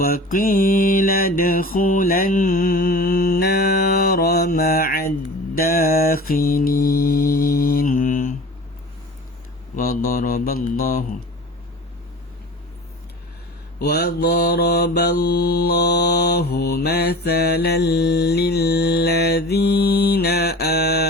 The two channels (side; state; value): both; normal; correlation 0.38